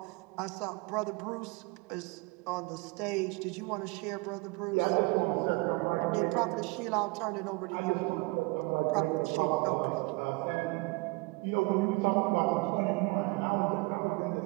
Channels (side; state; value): left; quieter; 26.4 dB